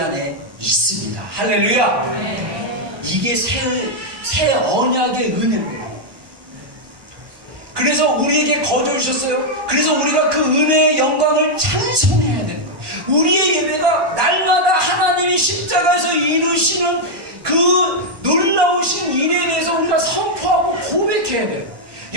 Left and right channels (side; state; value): left; late; 1.2 ms